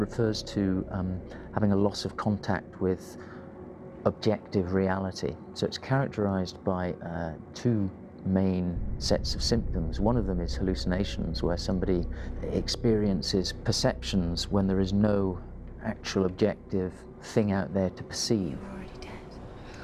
to having a loss of contact with objective reality. So it's characterized by two main sets of symptoms. One of them is hallucinations, where somebody experiences perceptions when there is no actual objective thing out there to perceive. You're already dead.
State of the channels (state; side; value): identical; both; correlation 1.00